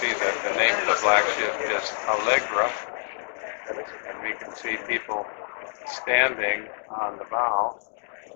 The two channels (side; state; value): right; silent; digital silence